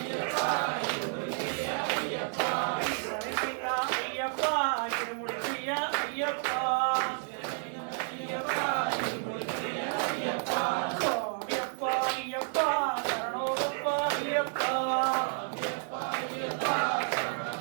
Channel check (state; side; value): silent; left; 57 dB below the other